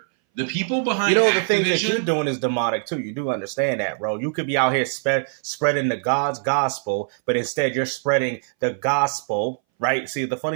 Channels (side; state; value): left; silent; 61 dB below the other